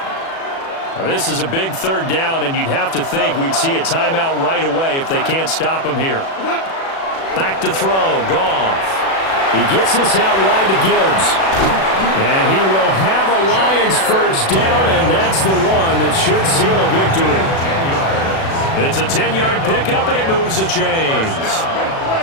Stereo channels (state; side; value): late; right; 36 ms